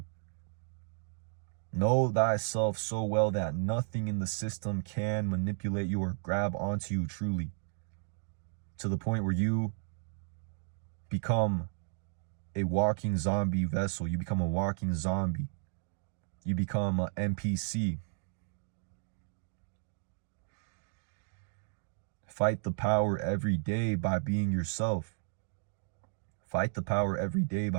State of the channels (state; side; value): silent; left; digital silence